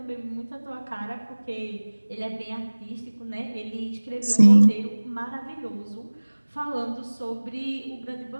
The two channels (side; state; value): both; inverted; correlation -1.00